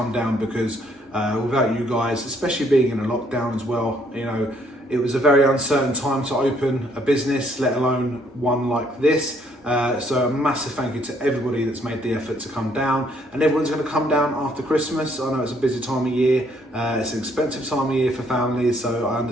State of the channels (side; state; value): both; normal; correlation 0.67